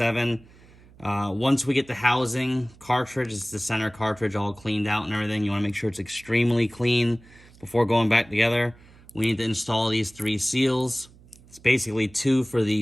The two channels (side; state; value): right; noise; hum, 25 dB below the sound